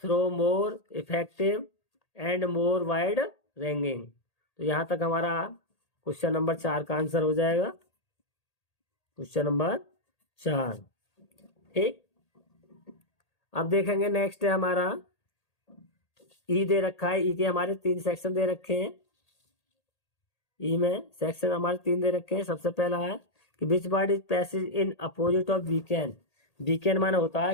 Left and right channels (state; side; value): late; right; 1.8 ms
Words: effective and more wide ranging। तो यहाँ तक हमारा क्वेश्चन नंबर 4 का आंसर हो जाएगा, क्वेश्चन नंबर 4। ठीक, अब देखेंगे नेक्स्ट है हमारा ई दे रखा है। ई के हमारे 3 सेक्शन दे रखे हैं। ई में सेक्शन हमारे 3 दे रखे हैं। सबसे पहला है कि which word is passage in opposite of weekend. Weekend माने होता है